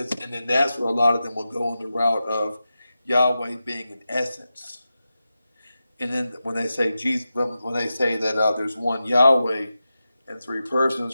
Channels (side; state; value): both; inverted; correlation -0.91